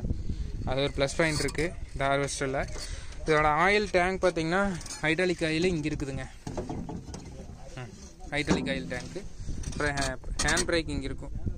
அது ஒரு ப்ளஸ் பாயிண்ட் இருக்குது இந்த ஹார்வெஸ்டரில். இதோட ஆயில் டேங்க் பார்த்தீங்கன்னா ஹைட்ராலிக் ஆயில் இங்கே இருக்குதுங்க, ஹைட்ராலிக் ஆயில் டேங்க்கு. அப்புறம் ஹேண்ட் பிரேக் இங்கே இருக்கும்.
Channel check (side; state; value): both; identical; correlation 1.00